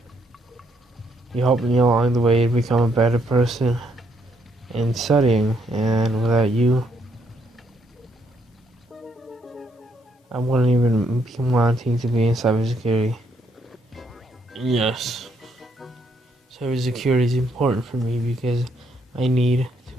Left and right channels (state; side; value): normal; both; correlation 0.73